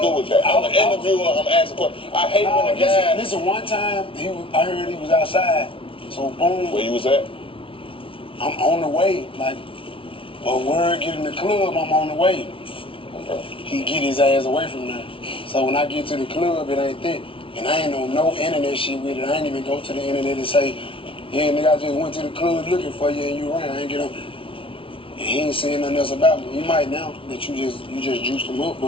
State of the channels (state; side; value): late; right; 0.26 ms